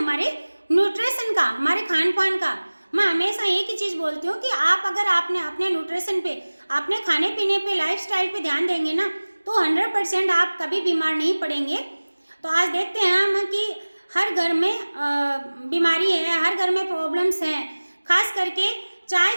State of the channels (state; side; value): inverted; both; correlation -1.00